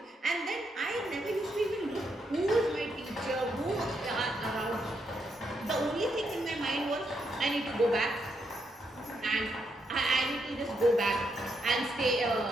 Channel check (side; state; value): both; normal; correlation 0.79